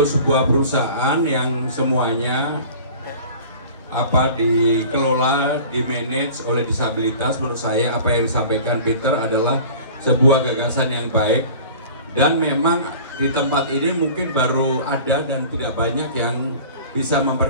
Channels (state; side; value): inverted; both; correlation -0.43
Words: sebuah perusahaan yang semuanya dikelola, dimanage oleh disabilitas, menurut saya apa yang disampaikan Peter adalah sebuah gagasan yang baik. Dan memang di tempat ini mungkin baru ada dan tidak banyak yang bisa